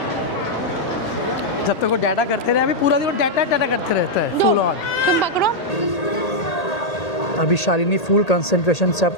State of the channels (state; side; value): late; right; 1.8 ms